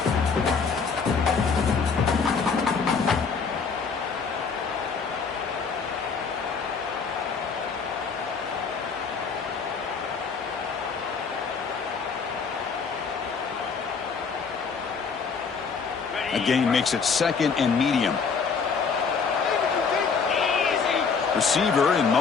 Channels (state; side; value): quieter; right; 5.5 dB